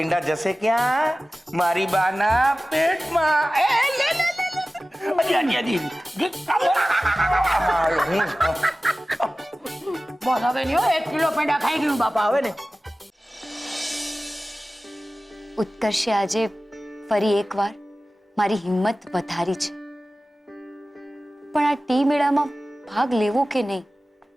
જશે ક્યાં? મારી બાના પેટમાં. એ લે લે લે હજી બસ હવે નહીં હો, 1 કિલો પેંડા ખાઈ ગયું બાપા હવે ને. ઉત્કર્ષે આજે ફરી એકવાર મારી હિંમત વધારી છે, પણ આ ટી મેળામાં ભાગ લેવો કે નહીં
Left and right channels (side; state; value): both; normal; correlation 0.96